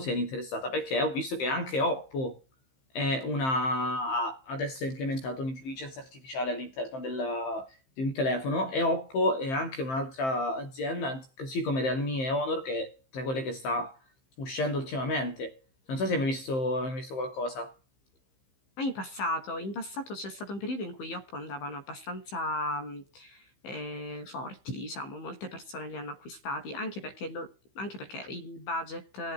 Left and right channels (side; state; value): right; late; 15 ms